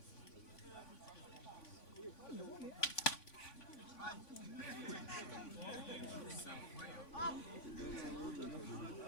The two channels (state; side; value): late; right; 3.5 ms